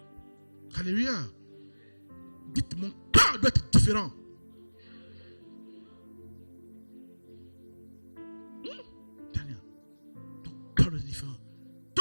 Alléluia. Dites, mon cœur doit être différent. Daniel, ton cœur doit être différent.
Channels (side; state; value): both; inverted; correlation -1.00